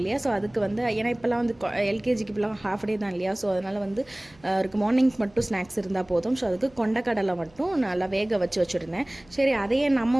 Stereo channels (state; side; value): noise; right; hum, 28 dB below the sound